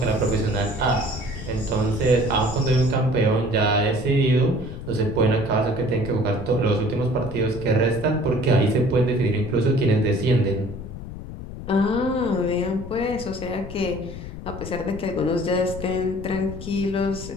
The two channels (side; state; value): left; noise; rumble, 11 dB below the sound